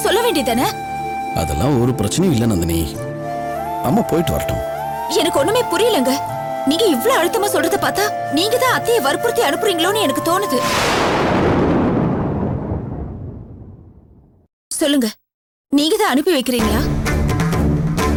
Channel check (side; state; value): both; identical; correlation 1.00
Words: சொல்ல வேண்டியதானே? அதெல்லாம் ஒரு பிரச்சனையும் இல்லை நந்தினி, அம்மா போயிட்டு வரட்டும். எனக்கு ஒண்ணுமே புரியலங்க. நீங்க இவ்ளோ அழுத்தமா சொல்றத பார்த்தா நீங்க தான் அத்தையை வற்புறுத்தி அனுப்புறீங்களோன்னு எனக்கு தோணுது. சொல்லுங்க, நீங்க தான் அனுப்பி வைக்கிறீங்களா?